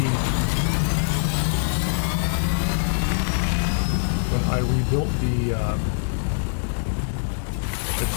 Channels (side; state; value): right; silent; digital silence